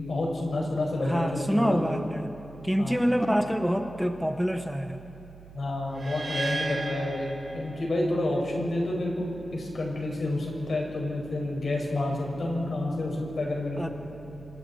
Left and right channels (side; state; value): right; noise; hum, 18 dB below the sound